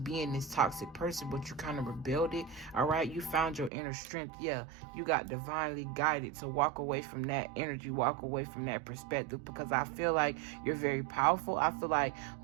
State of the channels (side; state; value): left; drops out; at 3.7 s